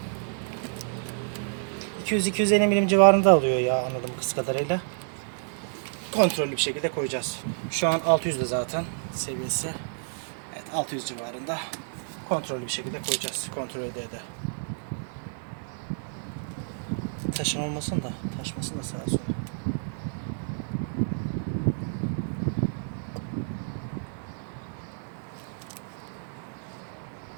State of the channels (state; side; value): silent; left; digital silence